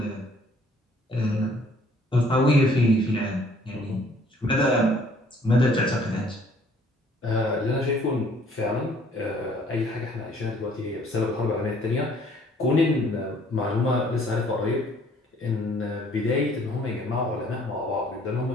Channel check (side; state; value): both; normal; correlation 0.59